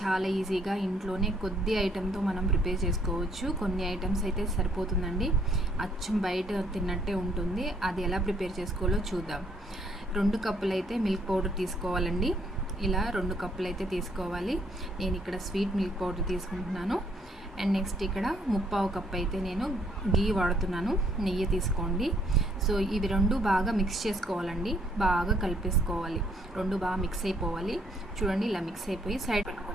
చాలా ఈజీగా ఇంట్లోనే కొద్ది ఐటెంతో మనం ప్రిపేర్ చేసుకోవచ్చు. కొన్ని ఐటమ్స్ అయితే సరిపోతుందండి, అచ్చం బయట తిన్నట్టే ఉంటుంది. అది ఎలా ప్రిపేర్ చేసుకోవాలో చూద్దాం. 2 కప్పులు అయితే మిల్క్ పౌడర్ తీసుకోవాలండి. ఇలా 2 కప్పులు అయితే తీసుకోవాలి. నేను ఇక్కడ స్వీట్ మిల్క్ పౌడర్ తీసుకుంటున్నాను. అండ్ నెక్స్ట్ ఇక్కడ 3/4 కప్ అయితే నేను గీ వాడుతున్నాను, నెయ్యి తీసుకోండి. సో ఇవి 2 బాగా మిక్స్ చేసుకోవాలండి, బాగా కలిపేసుకోవాలి. 2 బాగా మిక్స్ అయిపోవాలి. చూడండి, ఇలా మిక్స్ అయిపోయి సైడ్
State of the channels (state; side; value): normal; both; correlation 0.67